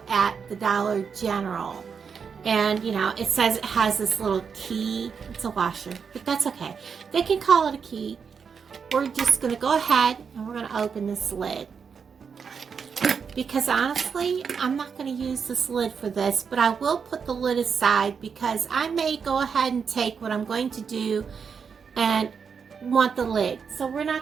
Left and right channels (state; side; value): quieter; left; 6.2 dB